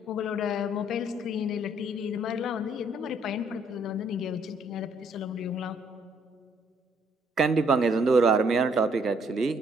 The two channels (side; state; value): both; normal; correlation 0.66